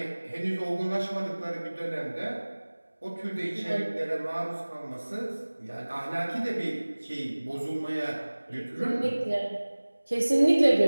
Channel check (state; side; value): inverted; both; correlation -1.00